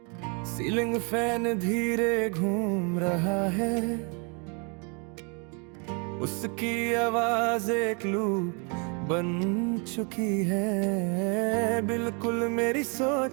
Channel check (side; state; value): left; quieter; 34.8 dB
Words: सीलिंग फैन धीरे घूम रहा है, उसकी आवाज एक लूप बन चुकी है, बिल्कुल मेरी